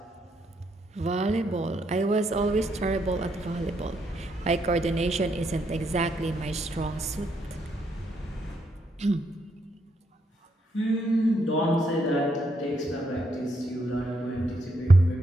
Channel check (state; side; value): normal; both; correlation 0.76